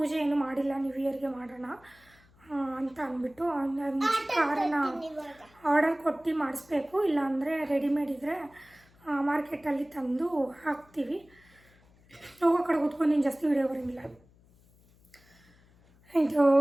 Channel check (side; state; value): left; noise; hum, 29 dB below the sound